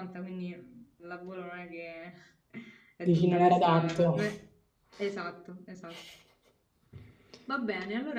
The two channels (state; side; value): identical; both; correlation 1.00